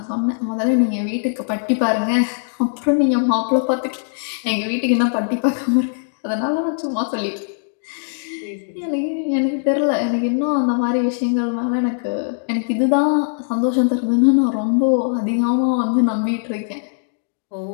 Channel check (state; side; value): silent; right; digital silence